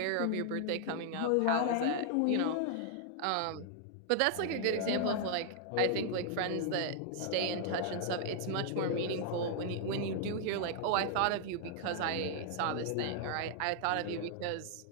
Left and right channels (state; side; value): different; both; correlation -0.01